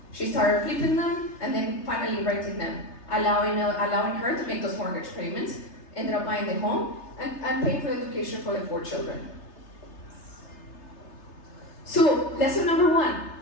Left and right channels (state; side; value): late; right; 3.3 ms